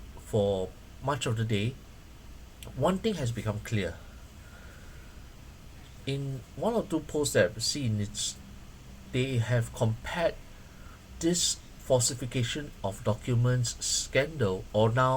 for much of the day, one thing has become clear. In one or two posts that I've seen, they have compared this falsification of documents scandal, or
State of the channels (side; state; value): both; identical; correlation 1.00